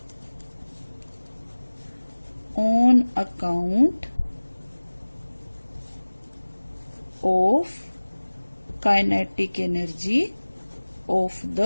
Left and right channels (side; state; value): both; inverted; correlation -1.00